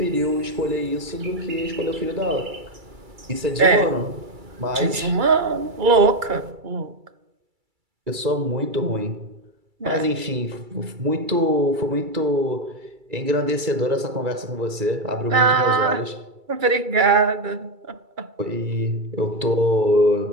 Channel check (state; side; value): late; left; 2.3 ms